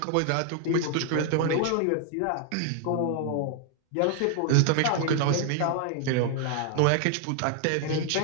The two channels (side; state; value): both; different; correlation 0.00